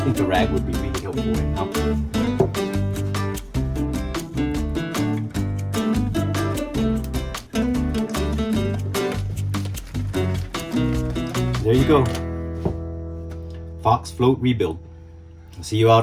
think the rag would be really helpful right now. There you go. Fox Float rebuild. I'll see you out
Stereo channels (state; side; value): identical; both; correlation 1.00